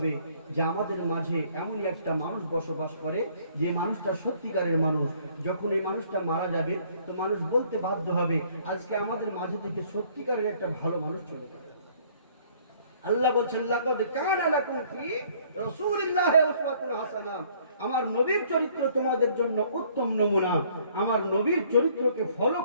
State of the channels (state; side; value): inverted; both; correlation -0.60